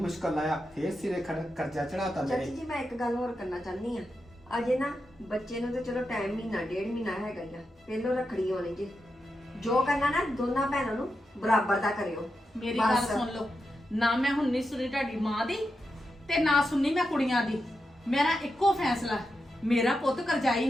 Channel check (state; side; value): normal; both; correlation 0.88